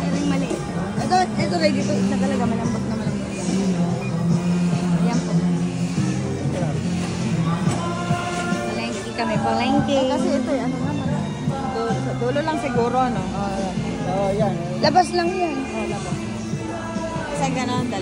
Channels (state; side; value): identical; both; correlation 1.00